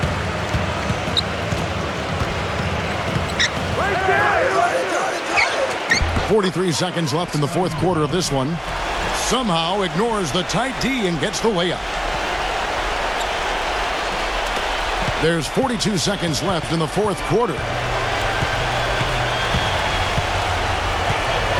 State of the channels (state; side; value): identical; both; correlation 1.00